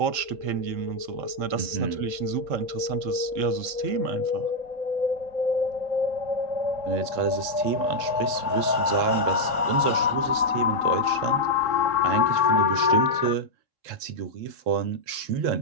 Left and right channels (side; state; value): left; late; 3.7 ms